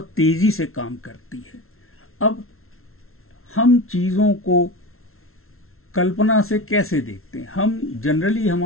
तेज़ी से काम करती है। अब हम चीज़ों को कल्पना से कैसे देखते हैं? हम जनरली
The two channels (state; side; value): late; right; 0.62 ms